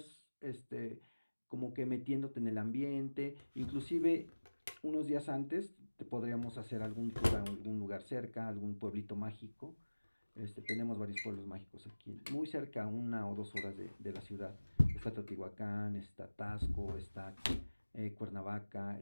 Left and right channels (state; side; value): inverted; both; correlation -1.00